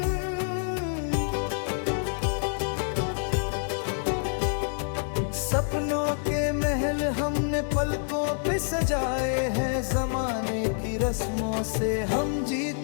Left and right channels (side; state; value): right; silent; 60 dB below the other